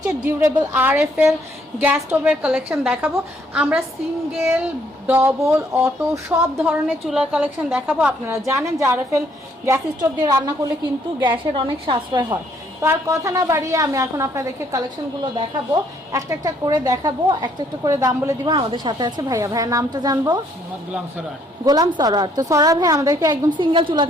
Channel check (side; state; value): both; normal; correlation 0.67